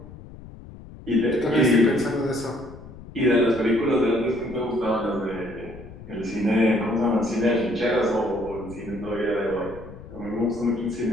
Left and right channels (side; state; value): left; noise; rumble, 16 dB below the sound